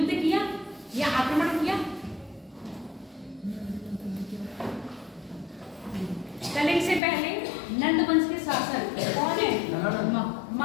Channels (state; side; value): drops out; right; at 7.0 s